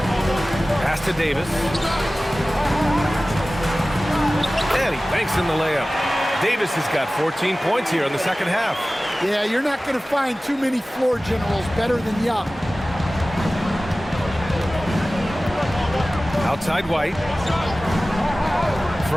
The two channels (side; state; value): both; normal; correlation 0.97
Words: Pass to Davis. And he banks in the layup. Davis has got 14 points here in the second half. Yeah, you're not going to find too many floor generals better than Young. Outside White.